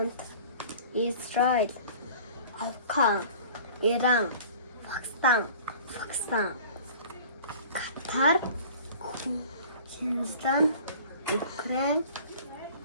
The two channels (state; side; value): inverted; both; correlation -0.45